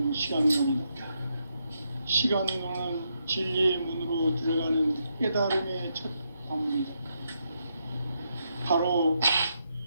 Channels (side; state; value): both; inverted; correlation -0.80